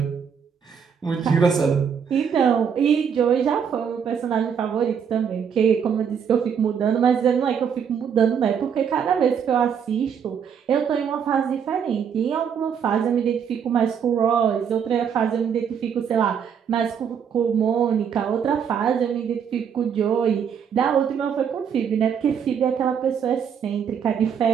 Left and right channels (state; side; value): quieter; left; 7.4 dB